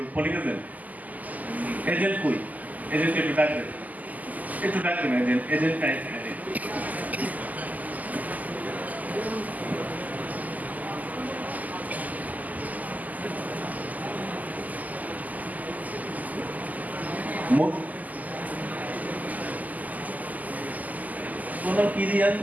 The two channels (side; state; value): left; late; 0.079 ms